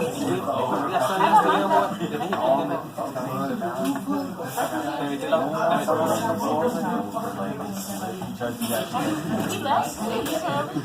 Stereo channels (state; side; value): identical; both; correlation 1.00